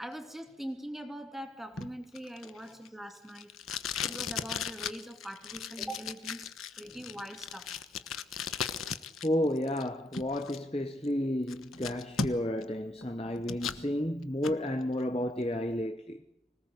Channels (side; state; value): both; normal; correlation 0.73